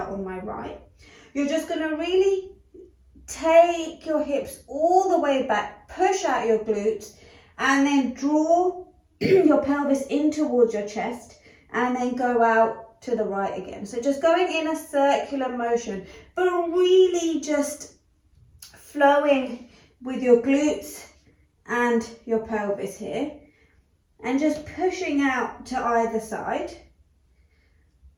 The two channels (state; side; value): identical; both; correlation 1.00